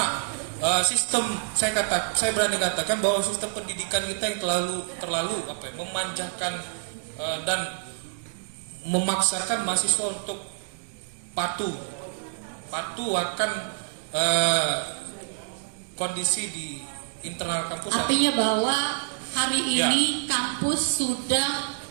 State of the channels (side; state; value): left; silent; 59 dB below the other